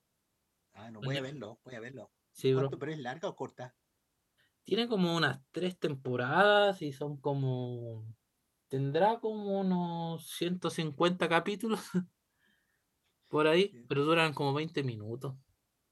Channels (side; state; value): both; identical; correlation 1.00